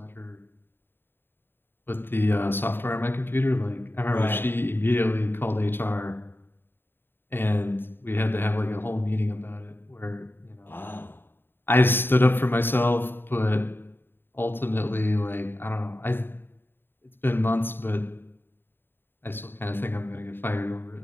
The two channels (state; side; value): late; right; 0.10 ms